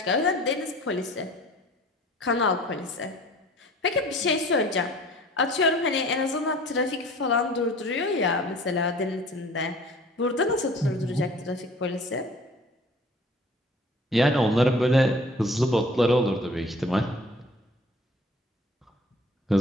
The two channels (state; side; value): normal; both; correlation 0.48